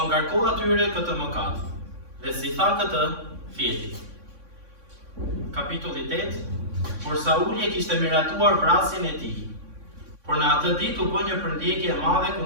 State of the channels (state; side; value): late; left; 3.6 ms